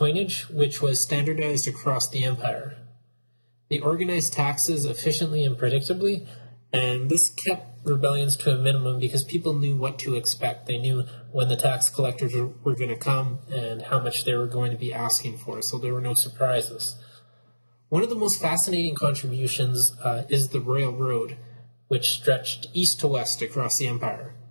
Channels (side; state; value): both; inverted; correlation -1.00